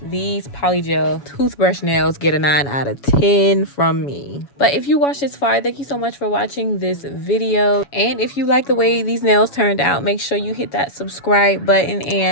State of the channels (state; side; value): late; right; 7.1 ms